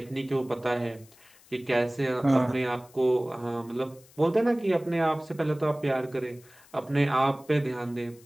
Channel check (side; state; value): left; noise; hiss, 26 dB below the sound